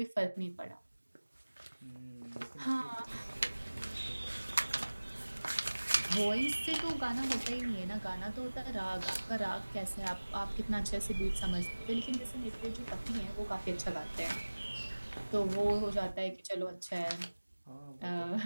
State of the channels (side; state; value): both; inverted; correlation -1.00